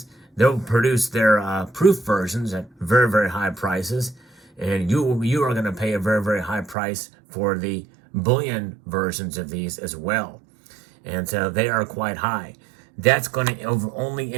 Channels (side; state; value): left; drops out; at 6.8 s